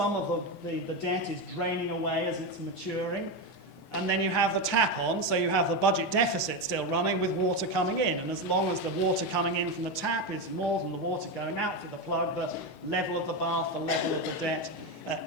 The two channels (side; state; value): both; normal; correlation 0.13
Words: of the debt is draining away as it's maturing, and then you have the tap on, so you have the budget deficit still running with water coming in, and as long as the water coming in from the tap is more than the water going out through the plug, the level of the bath, the level of the debt